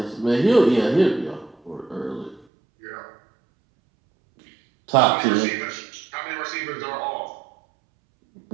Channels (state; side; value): drops out; left; at 2.5 s